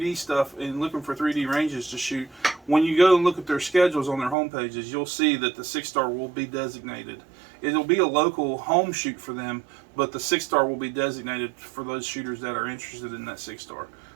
stuff and looking for 3D ranges to shoot, when you go and look at their schedules on their home pages, you'll see that the 6-star will be designated. It'll be a local home shoot for them, but the 6-star will be designated for those shooters that are interested in that 6-star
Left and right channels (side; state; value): left; drops out; at 4.4 s